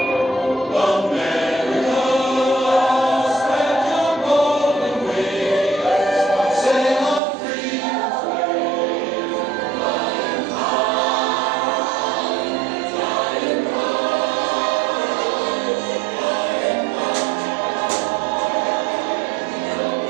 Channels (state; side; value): drops out; left; at 7.2 s